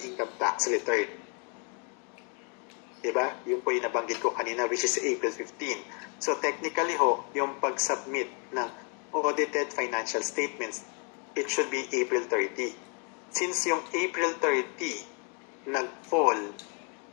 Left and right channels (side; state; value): right; quieter; 37.6 dB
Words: income tax return. Diba? Yung po yung nabanggit ko kanina, which is April 15. So technically ho, yung pag-submit ng audited financial statements, it should be April 30. Since yung April 30 nag-fall